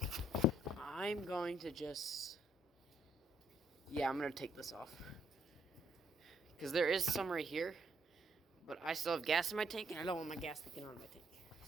I'm going to just... Yeah, I'm going to take this off. Because there is some right here. But I still have gas in my tank, and I don't want my gas leaking out of my tank.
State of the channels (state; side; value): normal; both; correlation 0.69